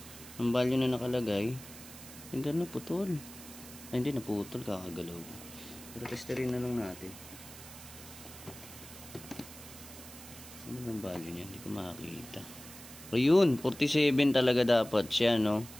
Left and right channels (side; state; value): right; noise; hiss, 15 dB below the sound